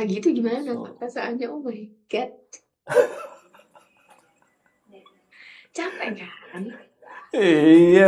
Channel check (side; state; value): both; identical; correlation 1.00